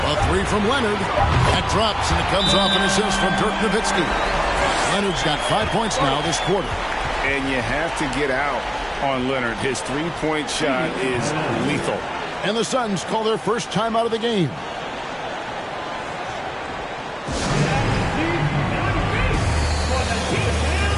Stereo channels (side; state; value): both; identical; correlation 1.00